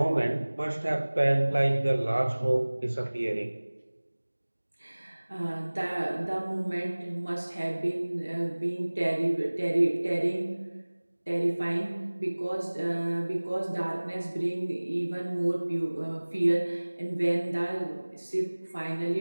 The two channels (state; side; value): inverted; both; correlation -1.00